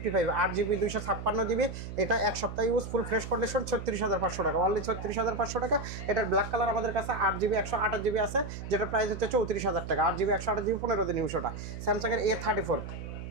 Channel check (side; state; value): right; noise; hum, 9 dB below the sound